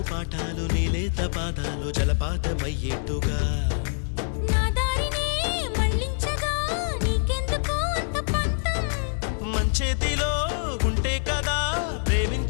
పాఠాలు నీలేత పాదాలు జలపాతమయ్యేట్టుగా నా దారినే మళ్ళించగా నీకెందుకు అంత పంతం మంచేతిలో ఉంటే కదా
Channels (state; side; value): silent; right; 61 dB below the other